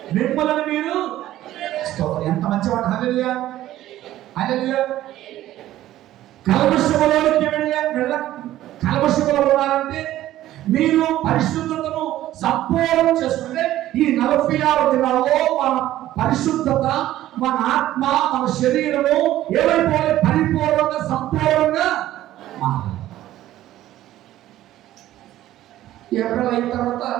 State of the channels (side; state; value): left; quieter; 14.0 dB